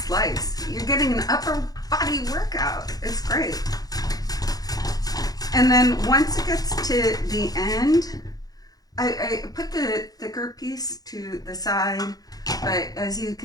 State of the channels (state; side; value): late; right; 0.18 ms